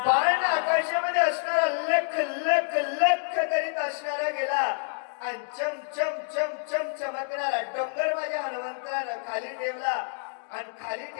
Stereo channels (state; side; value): silent; right; digital silence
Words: बाण आकाशामध्ये असणारा लख लख लख करीत असणारा गेला आणि चम चम चम चम चमकणारा डोंगर माझ्या हनुमंतरानं खाली ठेवला आणि खाली